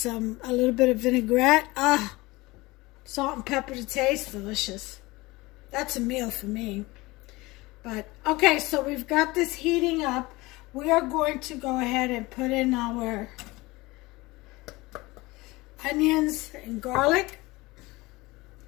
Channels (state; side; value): quieter; right; 21.6 dB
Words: a little bit of vinaigrette. Salt and pepper to taste. Delicious. That's a meal for me. But, okay, so we've got this heating up. We are going to go ahead and put in our onions and garlic.